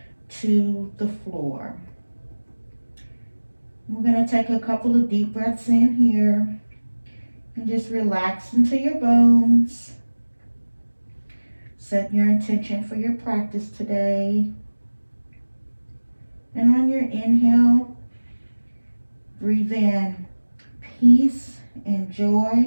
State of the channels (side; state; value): both; inverted; correlation -1.00